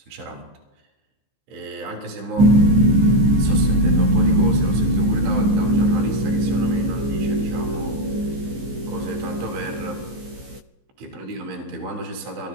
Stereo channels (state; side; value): late; left; 15 ms